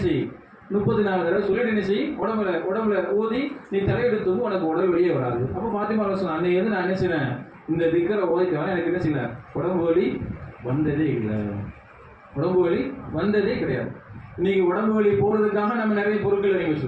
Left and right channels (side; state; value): both; identical; correlation 1.00